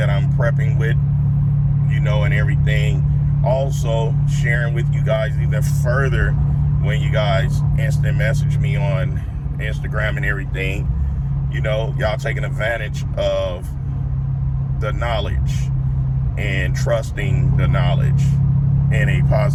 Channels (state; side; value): identical; both; correlation 1.00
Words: I'm prepping with, and everything. Also sharing with you guys even further when you guys instant message me on Instagram and everything. Y'all taking advantage of the knowledge and trusting the knowledge in a